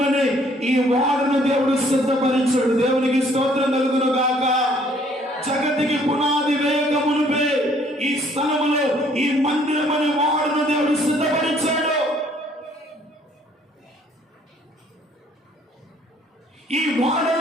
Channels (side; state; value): both; normal; correlation 0.61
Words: అనే ఈ వాడను దేవుడు సిద్ధపరిచాడు. దేవునికి స్తోత్రం కలుగును గాక. జగతికి పునాది వేగమునుపే ఈ స్థలములో ఈ మందిరం అనే వాడను దేవుడు సిద్ధపరిచాడు. ఈ